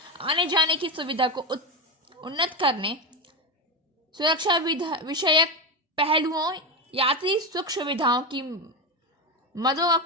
आने जाने की सुविधा को उन्नत करने, सुरक्षा विषयक पहलुओं, यात्री सुख सुविधाओं की मदों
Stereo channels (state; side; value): normal; both; correlation 0.16